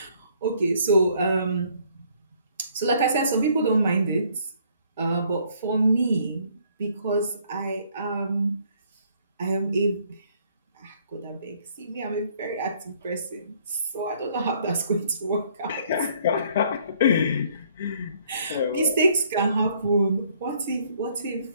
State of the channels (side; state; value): both; inverted; correlation -0.63